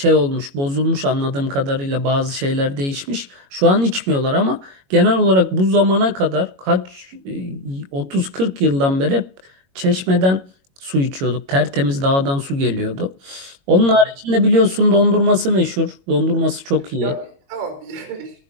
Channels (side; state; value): left; late; 22 ms